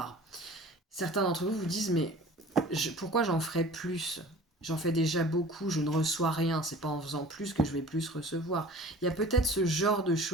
Certains d'entre vous vous disent, mais pourquoi j'en ferais plus? J'en fais déjà beaucoup, je ne reçois rien, c'est pas en faisant plus que je vais plus recevoir. Il y a peut-être ce genre de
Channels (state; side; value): normal; both; correlation 0.44